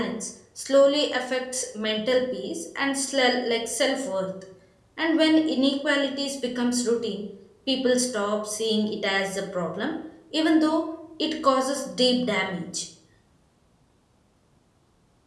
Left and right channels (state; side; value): identical; both; correlation 1.00